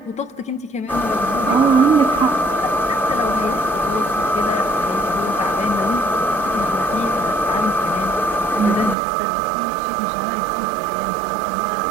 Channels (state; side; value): drops out; left; at 9.0 s